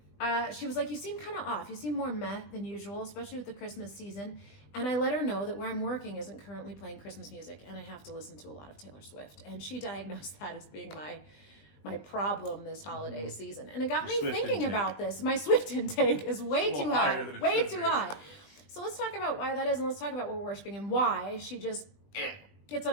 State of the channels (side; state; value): right; late; 20 ms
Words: she was like, you seem kind of off. You seem more meh than usual, especially with the Christmas season. And I let her know that where I'm working isn't currently playing Christmas music. And I have to listen to a lot of Taylor Swift. And she diagnosed that as being my problem this holiday season. And it got me thinking about this. My Swift intake is way too high. Way too high. So let's talk about why that is, and let's talk about what we're worshiping and why she just gets